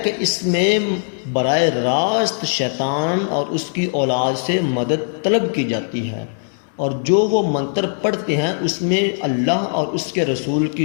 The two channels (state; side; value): silent; right; 66 dB below the other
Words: کہ اس میں براہ راست شیطان اور اس کی اولاد سے مدد طلب کی جاتی ہے، اور جو وہ منتر پڑھتے ہیں اس میں اللہ اور اس کے رسول